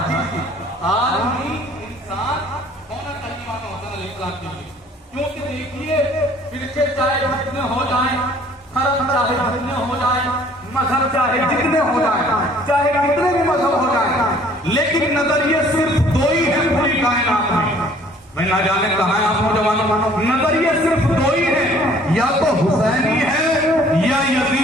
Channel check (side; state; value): both; normal; correlation 0.56